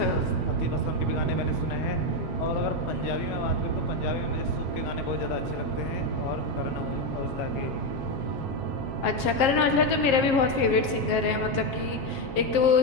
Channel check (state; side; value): late; right; 7.5 ms